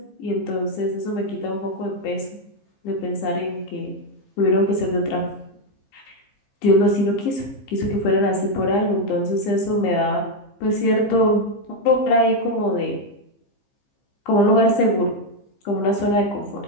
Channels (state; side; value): late; right; 15 ms